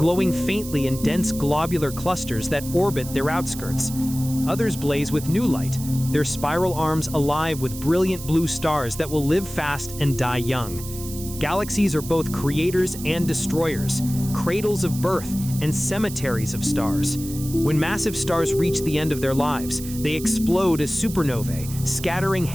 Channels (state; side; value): noise; right; hiss, 12 dB below the sound